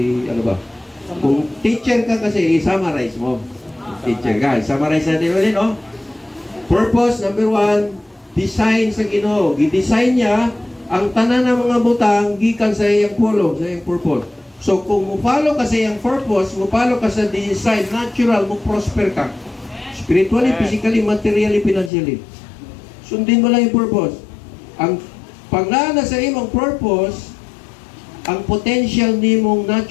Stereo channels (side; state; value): right; drops out; at 21.9 s